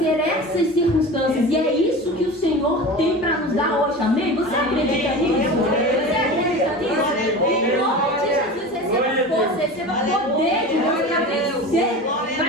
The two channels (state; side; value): normal; both; correlation 0.32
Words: essas circunstâncias. E é isso que o Senhor tem para nos dar hoje. Amém? Você acredita nisso? Você acredita nisso? Em nome de Jesus, receba força, receba poder de Deus para vencer,